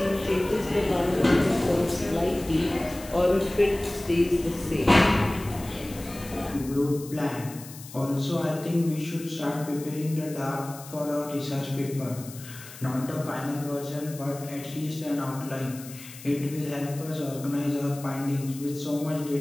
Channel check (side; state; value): left; noise; hiss, 16 dB below the sound